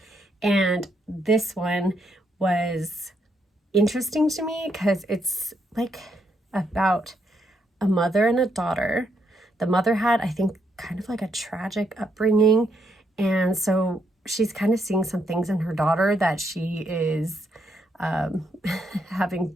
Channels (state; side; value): normal; both; correlation 0.77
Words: and this one was interesting to me because it's like about a mother and a daughter. the mother had, I think, kind of like a tragic upbringing. And so she's kind of seeing some things in her daughter that she is having